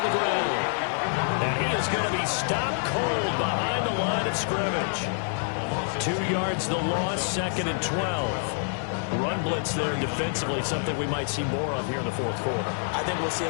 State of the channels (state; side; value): silent; right; 60 dB below the other